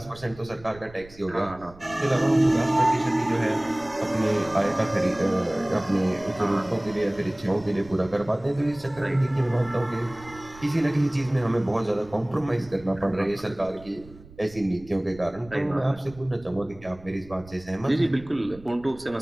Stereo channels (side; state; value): right; noise; rumble, 21 dB below the sound